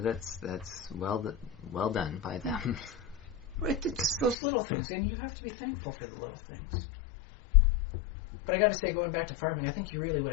well done by them. It's those little things, and you have to be thankful for the little things. But I got to say, going back to farming, I think you really would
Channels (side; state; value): right; drops out; at 4.4 s